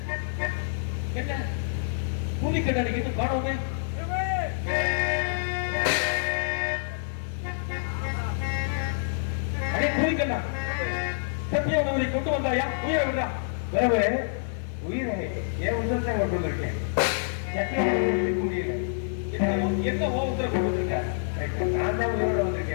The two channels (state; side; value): silent; right; 55 dB below the other